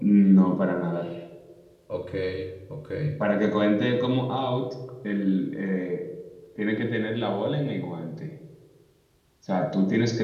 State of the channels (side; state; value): both; identical; correlation 1.00